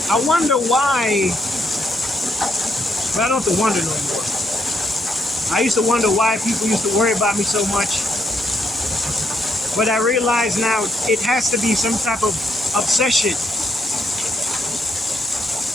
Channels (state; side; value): normal; both; correlation 0.76